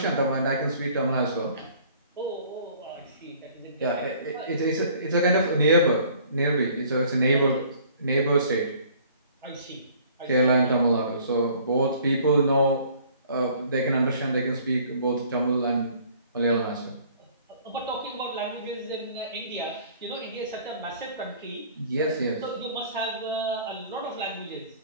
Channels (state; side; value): inverted; both; correlation -0.54